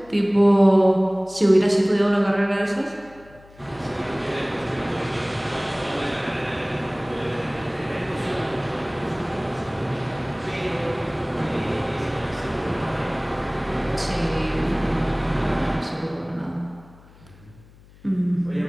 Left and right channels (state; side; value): noise; left; hum, 24 dB below the sound